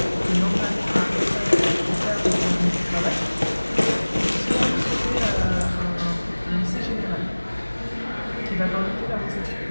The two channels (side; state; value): both; inverted; correlation -1.00